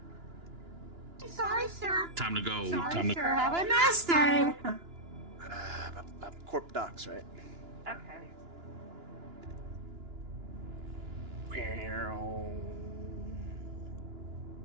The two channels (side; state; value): left; late; 2.9 ms